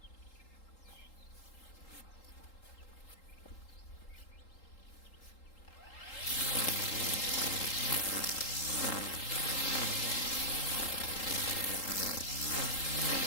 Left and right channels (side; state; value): right; late; 3.8 ms